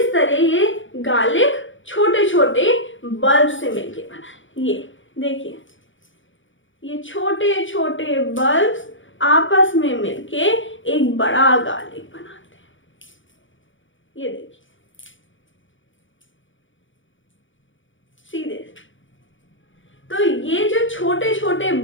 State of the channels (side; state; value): right; late; 0.56 ms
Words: तरह ये गार्लिक छोटे छोटे बल्ब से मिलके बना है। ये देखिए, ये छोटे छोटे बल्ब्स आपस में मिलके एक बड़ा गार्लिक बनाते हैं। ये देखिए सीधे। तो ये जो छोटे छोटे